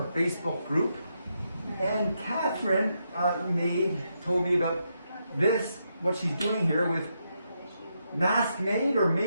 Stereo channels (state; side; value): inverted; both; correlation -0.81